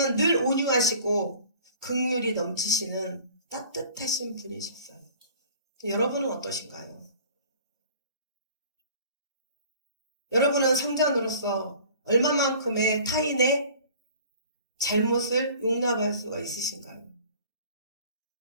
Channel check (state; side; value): inverted; both; correlation -0.48